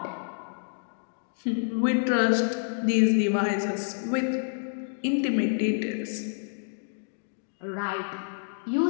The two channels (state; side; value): silent; right; digital silence